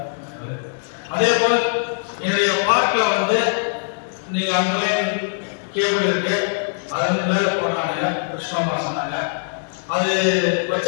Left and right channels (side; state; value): right; silent; digital silence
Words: அதே போல என்னுடைய பார்க்ல வந்து நீங்க அங்கே கேபிள் இருக்கு. அது வந்து மேல போடுறாங்க. கிருஷ்ணமா சொன்னாங்க. அது